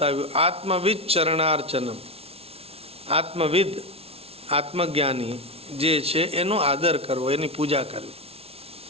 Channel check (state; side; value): late; left; 0.29 ms